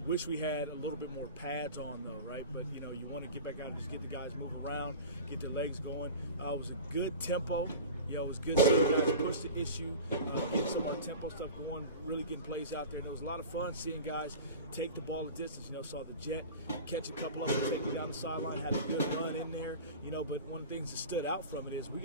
Wish we had a little bit more pads on though, right? But you want to get back out and just get the guys moving around, get their legs going. It was a good tempo. It was good seeing guys push the issue, getting some of our tempo stuff going, really getting plays out there. And it was a lot of fun seeing guys take the ball a distance. Saw the Jet catch a couple of them, take them down the sideline, had a good run in there. But one of the things that stood out from it is we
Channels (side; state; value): both; inverted; correlation -0.33